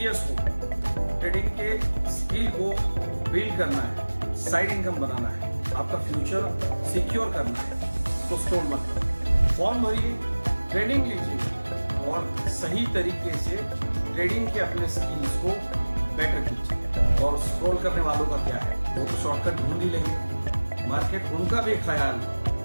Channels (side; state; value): both; inverted; correlation -1.00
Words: हो, ट्रेडिंग के स्किल को बिल्ड करना है, साइड इनकम बनाना है, आपका फ्यूचर सिक्योर करना है, तो स्टॉल मत करो। फॉर्म भरिए, ट्रेनिंग लीजिए और सही तरीके से ट्रेडिंग के अपने स्किल्स को बेटर कीजिए। और स्क्रॉल करने वालों का क्या है, वो तो शॉर्टकट ढूंढ ही लेंगे, मार्केट उनका भी ख्याल